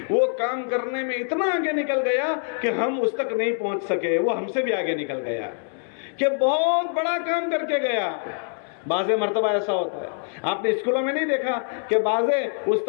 وہ کام کرنے میں اتنا آگے نکل گیا کہ ہم اس تک نہیں پہنچ سکے، وہ ہم سے بھی آگے نکل گیا، کہ بہت بڑا کام کر کے گیا۔ بعض مرتبہ ایسا ہوتا ہے، آپ نے اسکولوں میں نہیں دیکھا کہ بعض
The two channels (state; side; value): silent; right; 62 dB below the other